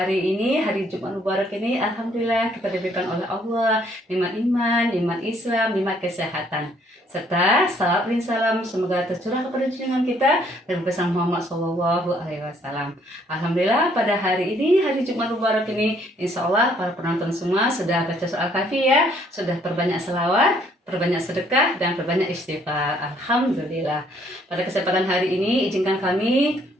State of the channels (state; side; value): normal; both; correlation 0.65